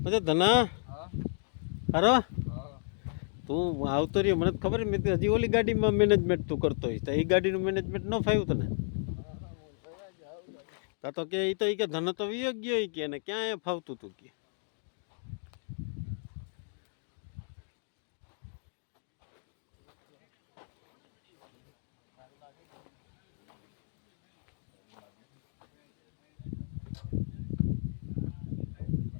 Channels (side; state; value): right; silent; 55 dB below the other